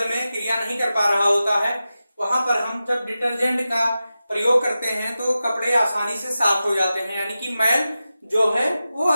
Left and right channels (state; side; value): inverted; both; correlation -0.93